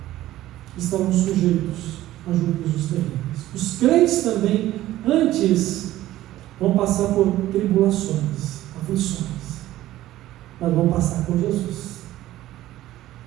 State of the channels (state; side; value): quieter; left; 14.8 dB